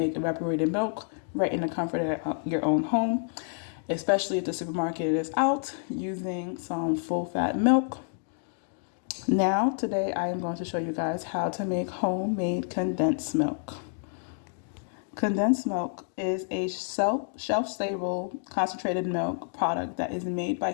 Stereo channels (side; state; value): right; silent; digital silence